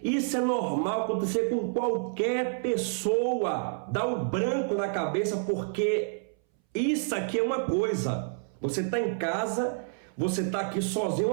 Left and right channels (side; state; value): left; silent; 59 dB below the other